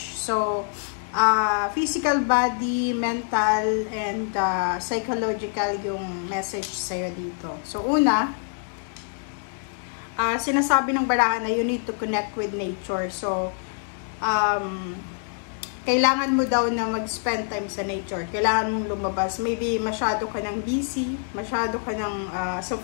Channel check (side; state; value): right; silent; 61 dB below the other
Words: So, physical body, mental, and psychological yung message sa'yo dito. So, una, sinasabi ng barahan na you need to connect with nature. So, kailangan mo daw na mag-spend time sa nature. Kailangan mong lumabas. Maybe masyado ka ng busy, masyado ka ng